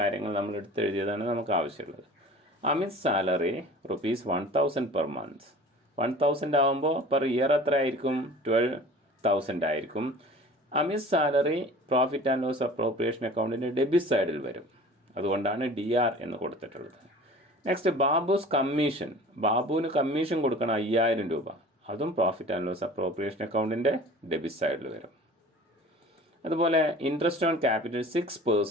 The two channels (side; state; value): both; normal; correlation 0.43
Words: നമ്മൾ എടുത്തെഴുതിയതാണ് നമുക്ക് ആവശ്യമുള്ളത്. Amit salary rupees 1,000 per month. 1,000 ആകുമ്പോൾ പെർ ഇയർ എത്ര ആയിരിക്കും? 12,000 ആയിരിക്കും. Amit salary profit and loss appropriation അക്കൗണ്ടിൻ്റെ ഡെബിറ്റ് സൈഡിൽ വരും. അതുകൊണ്ടാണ് DR എന്ന് കൊടുത്തിട്ടുള്ളത്. Next Babu's commission. ബാബുവിന് കമ്മീഷൻ കൊടുക്കണം 5,000 രൂപ. അതും പ്രോഫിറ്റ് ആൻഡ് ലോസ് അപ്രോപ്രിയേഷൻ അക്കൗണ്ടിൻ്റെ ഡെബിറ്റ് സൈഡിൽ വരും. അതുപോലെ interest on capital